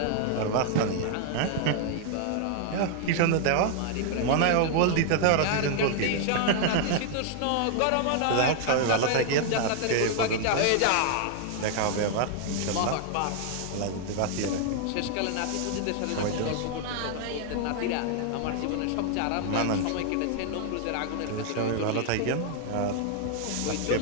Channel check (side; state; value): both; different; correlation 0.00